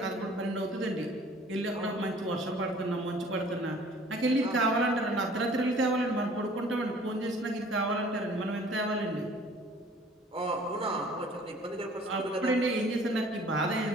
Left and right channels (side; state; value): both; normal; correlation 0.52